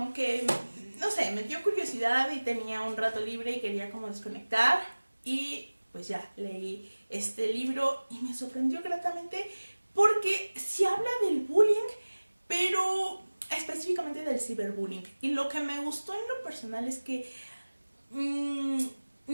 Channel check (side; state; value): both; inverted; correlation -1.00